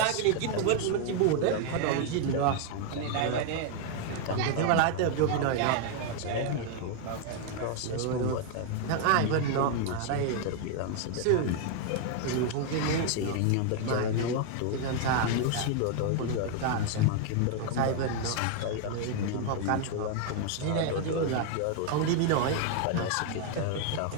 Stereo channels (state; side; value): different; both; correlation 0.00